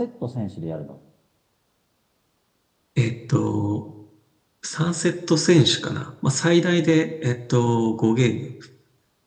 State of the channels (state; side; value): identical; both; correlation 1.00